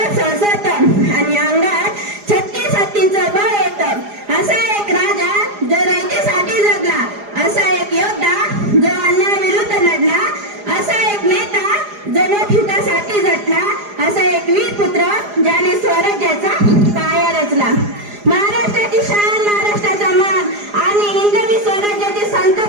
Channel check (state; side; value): late; left; 4.9 ms